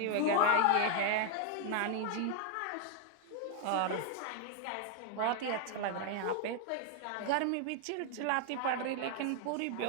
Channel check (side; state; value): both; different; correlation 0.00